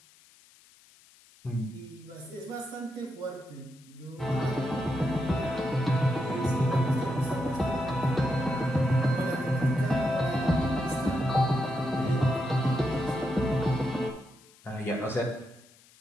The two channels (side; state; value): left; noise; hiss, 27 dB below the sound